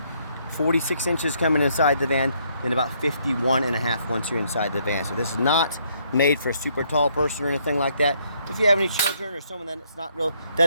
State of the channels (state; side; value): inverted; both; correlation -0.70